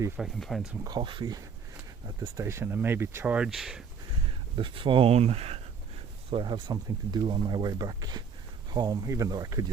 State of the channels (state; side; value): quieter; left; 6.1 dB